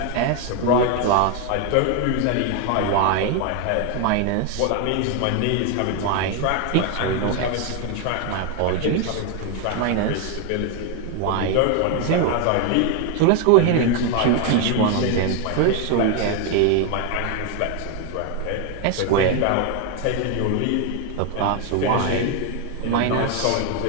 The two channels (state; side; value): different; both; correlation 0.01